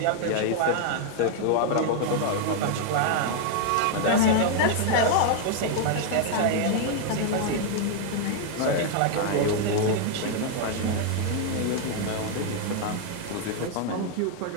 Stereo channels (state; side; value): different; both; correlation 0.00